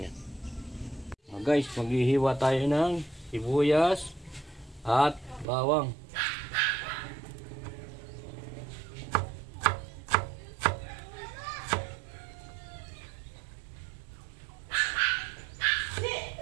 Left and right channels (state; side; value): drops out; left; at 5.5 s